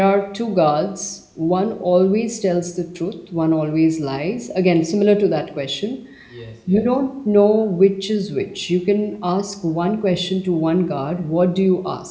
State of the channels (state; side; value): identical; both; correlation 1.00